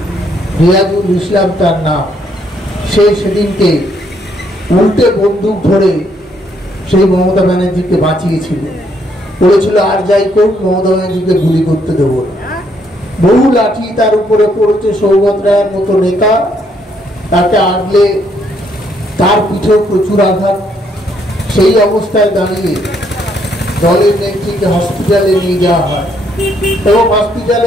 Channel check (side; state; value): both; normal; correlation 0.71